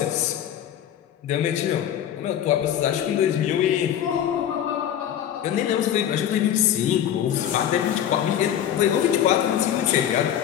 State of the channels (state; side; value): quieter; right; 10.3 dB